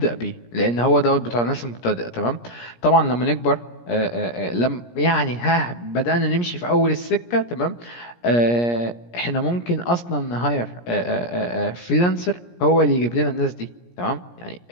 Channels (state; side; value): late; right; 17 ms